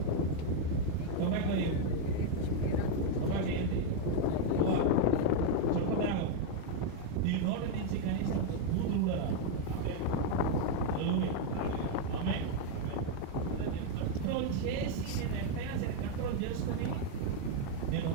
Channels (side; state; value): both; different; correlation 0.00